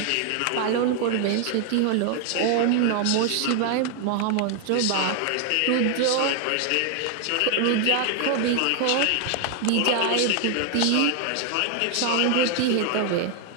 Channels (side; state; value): both; different; correlation 0.00